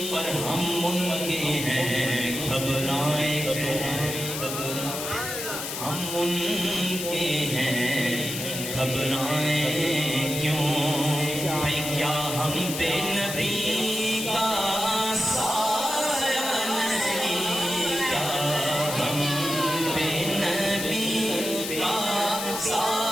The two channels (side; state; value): left; noise; hiss, 5 dB below the sound